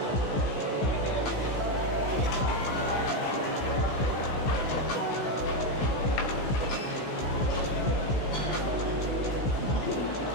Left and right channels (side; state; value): right; late; 16 ms